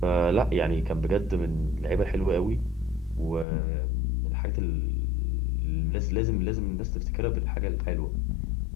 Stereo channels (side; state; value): right; drops out; at 3.5 s